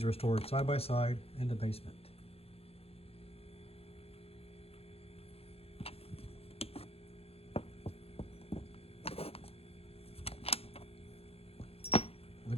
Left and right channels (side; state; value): right; late; 0.29 ms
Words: were stored side by side in the basement.